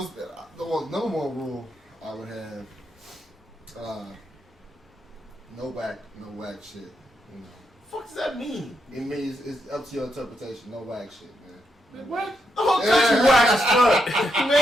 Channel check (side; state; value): both; normal; correlation 0.82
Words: The number 1 rule I would have. No whack shit. You know. Fuck does that mean? It means it's up to your interpretation. No whack shit, man. What? The whole country whack as fuck,